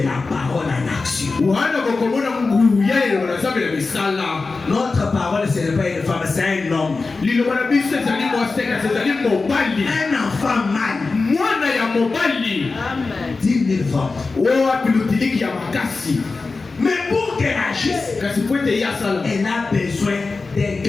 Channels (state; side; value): quieter; right; 4.0 dB